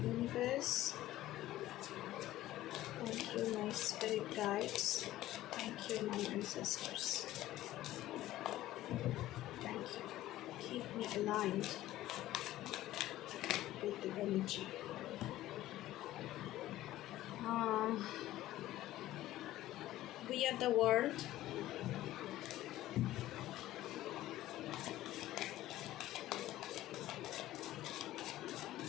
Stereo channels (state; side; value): quieter; right; 15.0 dB